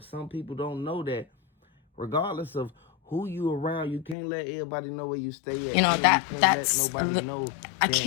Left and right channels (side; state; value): right; drops out; at 4.2 s